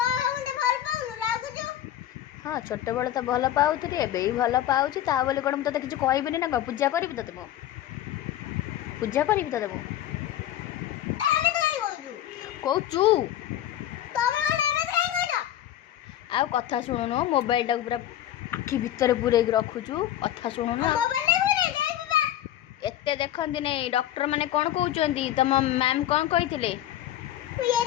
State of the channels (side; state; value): right; quieter; 12.3 dB